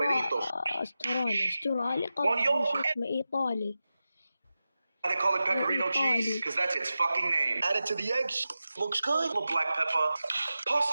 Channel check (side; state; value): both; inverted; correlation -0.93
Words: استرالي One قصدي yolk. شو اسمه إيطالي. They call it pecorino cheese because that's its fucking name. Add it to the eggs. Looks good. A little black pepper.